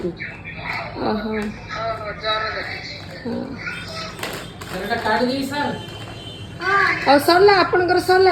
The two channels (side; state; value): both; identical; correlation 1.00